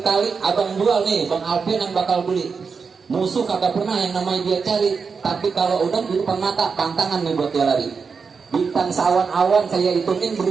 kali, abang jual nih, Bang Alfian yang bakal beli. Musuh kagak pernah yang namanya dia cari, tapi kalau udah di depan mata, pantangan nih buat dia lari. Bintang sawan-awan saya hitungin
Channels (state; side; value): quieter; left; 5.3 dB